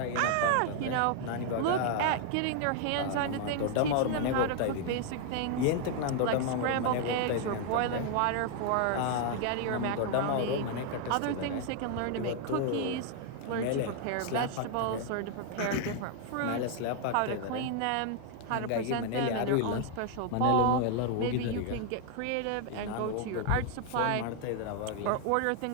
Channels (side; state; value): both; different; correlation 0.00